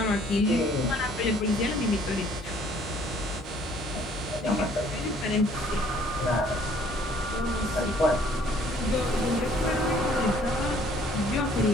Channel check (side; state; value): both; normal; correlation 0.59